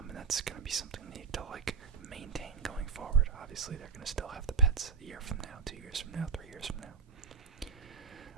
And that's going to be something they need to maintain going forward. Obviously, they're going to still have the pets a year from now, 2 years from now, 3 years from now.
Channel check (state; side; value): quieter; left; 5.4 dB